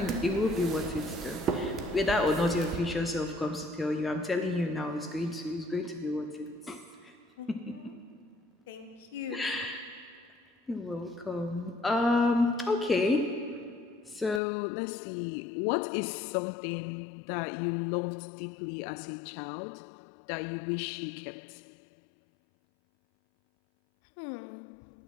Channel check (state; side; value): drops out; right; at 14.4 s